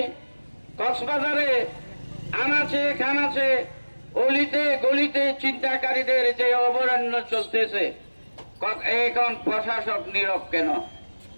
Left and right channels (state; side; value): inverted; both; correlation -1.00